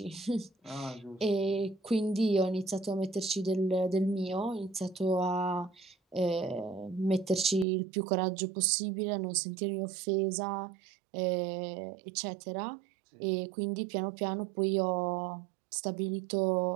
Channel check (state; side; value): drops out; left; at 7.7 s